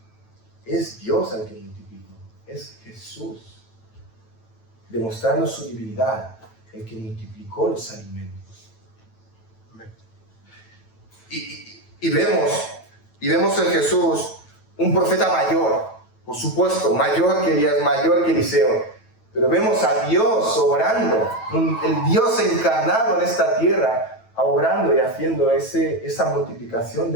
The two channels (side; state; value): right; late; 9.1 ms